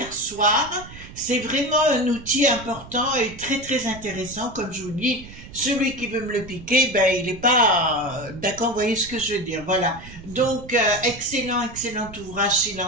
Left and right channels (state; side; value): noise; right; rumble, 16 dB below the sound